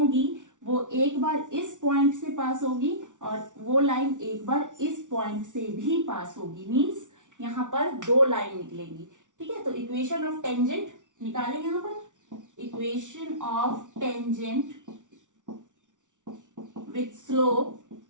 वो एक बार इस पॉइंट से पास होगी और वो लाइन एक बार इस पॉइंट से भी पास होगी, मींस यहाँ पर दो लाइन निकलेंगी। ठीक है, तो इक्वेशन ऑफ टेंजेंट निकालेंगे यहाँ पर, equation of tangent with slope,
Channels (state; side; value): late; left; 0.87 ms